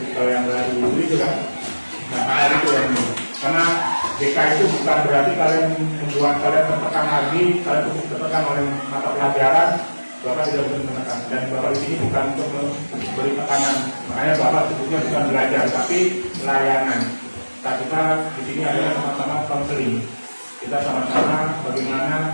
yang baru, itu kan. Nah itu yang ini. Karena BK itu bukan berarti kalian membuat kalian tertekan lagi, kalian tertekan oleh mata pelajaran, Bapak tidak bisa menekan. Dan Bapak di sini bukan untuk memberi tekanan, makanya Bapak sebutnya bukan belajar, tapi layanan. Nah, kita di sini adalah sama-sama konseling. Kita sama-sama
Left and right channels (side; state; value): both; inverted; correlation -1.00